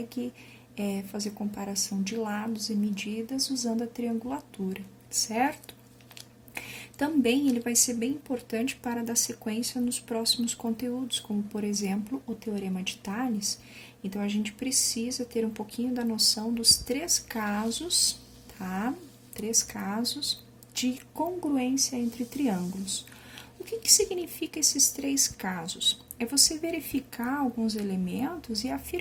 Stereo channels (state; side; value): identical; both; correlation 1.00